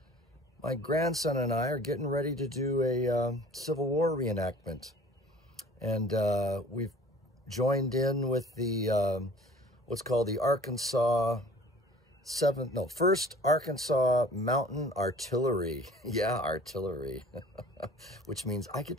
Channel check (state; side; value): normal; both; correlation 0.48